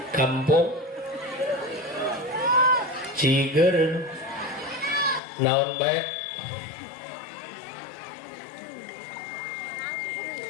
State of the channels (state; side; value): drops out; right; at 5.2 s